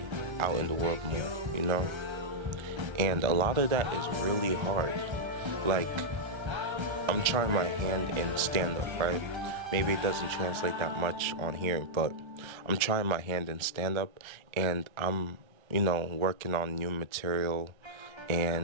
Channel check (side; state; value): left; late; 1.3 ms